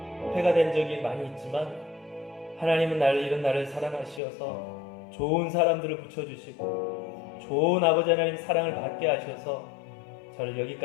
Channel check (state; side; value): drops out; right; at 4.2 s